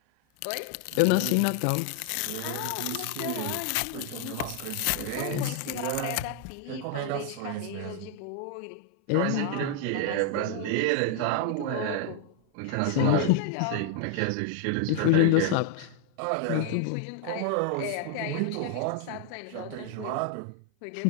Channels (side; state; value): both; different; correlation 0.00